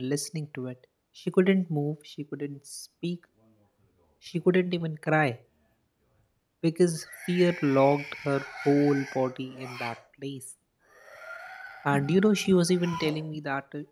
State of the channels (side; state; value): both; identical; correlation 1.00